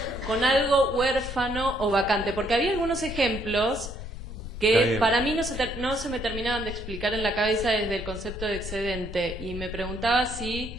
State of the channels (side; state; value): left; noise; rumble, 9 dB below the sound